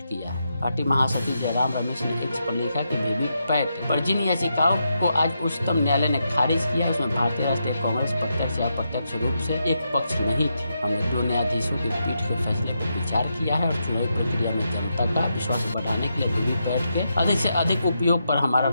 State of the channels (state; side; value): inverted; both; correlation -0.84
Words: किया है। पार्टी महासचिव जयराम रमेश ने एक्स पर लिखा कि वीवीपैट पर जिन याचिकाओं को आज उच्चतम न्यायालय ने खारिज किया उसमें भारतीय राष्ट्रीय कांग्रेस प्रत्यक्ष या अप्रत्यक्ष रूप से एक पक्ष नहीं थी। हमने 2 न्यायाधीशों की पीठ के फैसले पर विचार किया है और चुनावी प्रक्रिया में जनता का विश्वास बढ़ाने के लिए वीवीपैट के अधिक से अधिक उपयोग पर हमारा